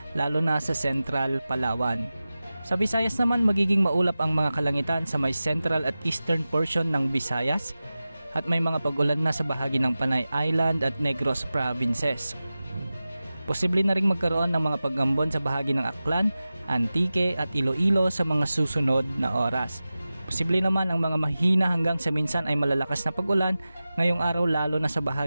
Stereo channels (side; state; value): both; inverted; correlation -0.95